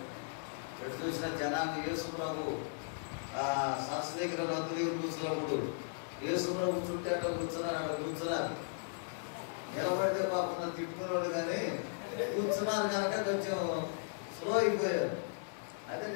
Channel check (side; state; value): right; silent; 53 dB below the other